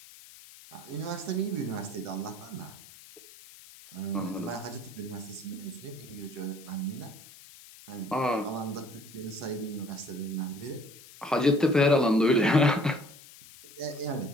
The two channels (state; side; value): noise; left; hiss, 19 dB below the sound